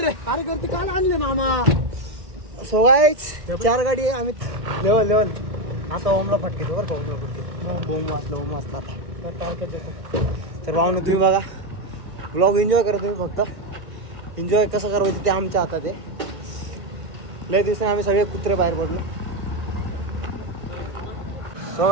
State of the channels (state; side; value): late; left; 1.3 ms